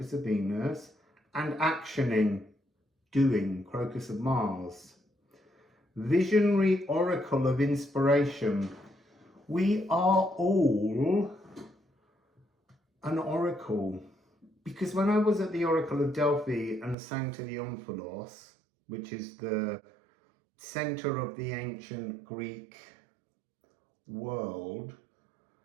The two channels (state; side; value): drops out; left; at 16.9 s